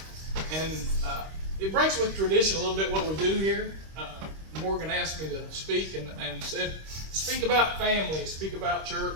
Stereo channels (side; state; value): left; late; 26 ms